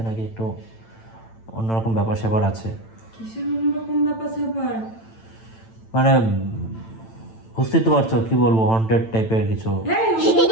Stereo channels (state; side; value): late; right; 8.9 ms